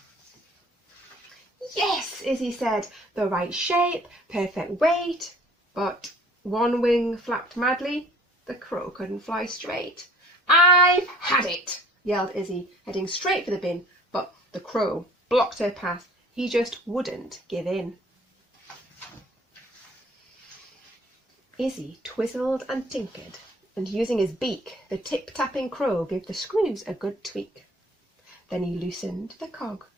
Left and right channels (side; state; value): both; normal; correlation 0.53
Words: Yes, Izzy said, the right shape, perfect weight, but one wing flapped madly. The crow couldn't fly straight. I've had it, yelled Izzy, heading straight for the bin, but the crow blocked her path. He just wouldn't give in. Izzy twizzled and tinkered, and using his beak, the tip-tapping crow gave the screws a good tweak. Then he loosened the cog